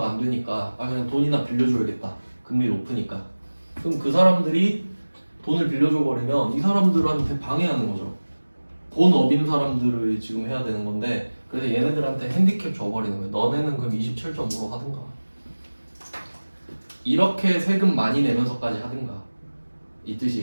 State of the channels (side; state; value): both; inverted; correlation -1.00